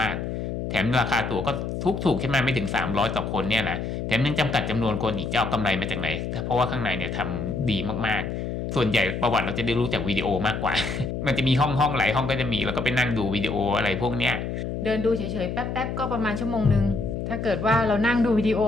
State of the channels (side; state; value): left; noise; hum, 4 dB below the sound